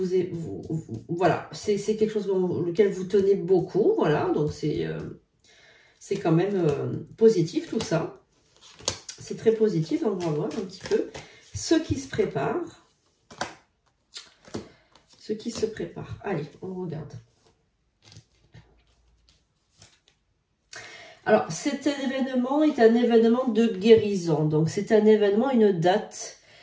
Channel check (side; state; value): both; identical; correlation 1.00